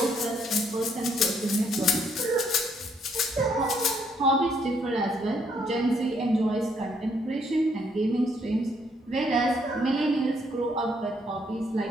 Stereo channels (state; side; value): normal; both; correlation 0.70